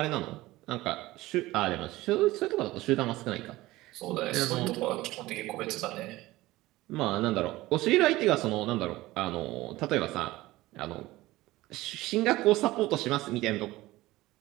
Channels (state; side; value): quieter; left; 18.2 dB